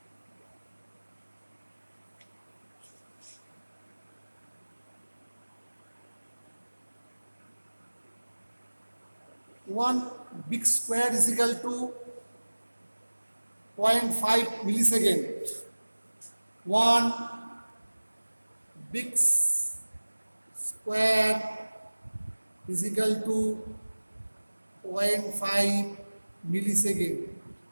One big square is equal to 0.5 millisecond. One big square is equal to 0.5 millisecond.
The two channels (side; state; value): both; inverted; correlation -1.00